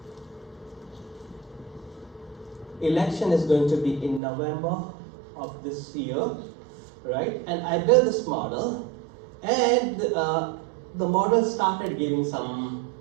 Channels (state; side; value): drops out; left; at 4.2 s